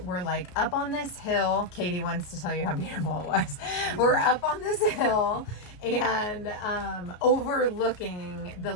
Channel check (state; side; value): late; right; 33 ms